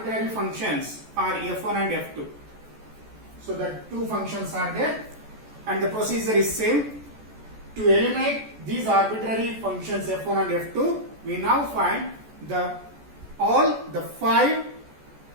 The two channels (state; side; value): late; left; 14 ms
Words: functions are f1 and f2. So the two functions are there and the procedure is same. To eliminate these arbitrary functions f1 and f2, we now find all the 5